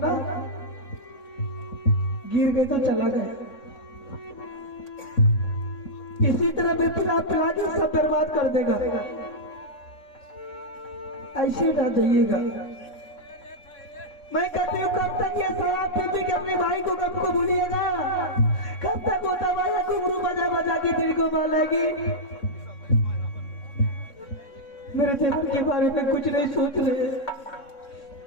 ना, गिर गए तो चला गया। इसी तरह बेपना पिला के सब बर्बाद कर देगा। ऐसे ना जाइएगा। मैं कहती हूँ कब तक ये शराब पी पी के अपने भाई को कब को भूलिएगा? कब तक होता भाई घुंघरू बजा बजा के दिल को बहलाएगी? मेरे देवर के बारे में कुछ नहीं सोच रहे।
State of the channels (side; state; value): right; late; 3.6 ms